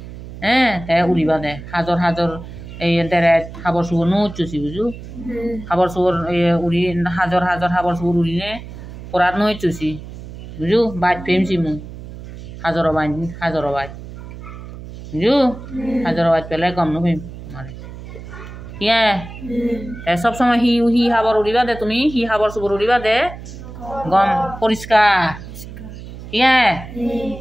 হ্যাঁ উড়িবা দে হাজর হাজর এই দেরে খাবার চুবর নৌচুছি বুঝু খাবার চুবর উড়ি হাজর হাজর খাবার চুবর উড়িনে পরাত নৌচুছি বুঝু বাইট ফেমছি মু হাজর বাইট বুঝু হাজর বাইট পেলে কম নফেম তোমারে ইয়ে সব সময় হি খাবার উড়িবা দে তুমি হি খাবার চুবর উড়িবা দে গম পরিষ্কার ইয়ে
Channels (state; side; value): noise; right; hum, 13 dB below the sound